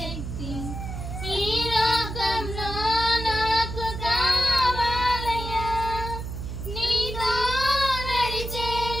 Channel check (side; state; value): right; noise; hum, 6 dB below the sound